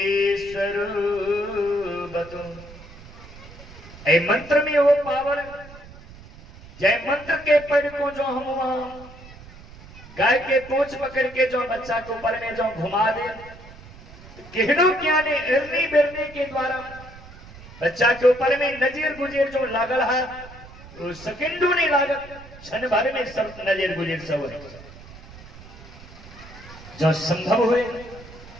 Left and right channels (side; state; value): right; noise; rumble, 18 dB below the sound